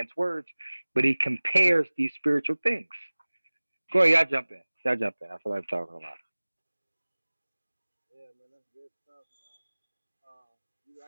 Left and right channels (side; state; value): both; inverted; correlation -1.00